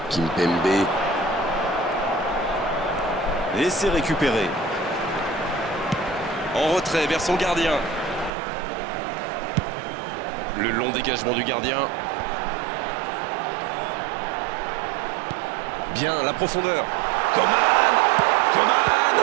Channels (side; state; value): left; drops out; at 8.3 s